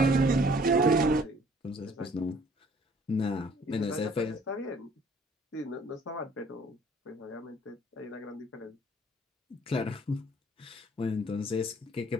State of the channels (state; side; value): normal; both; correlation 0.58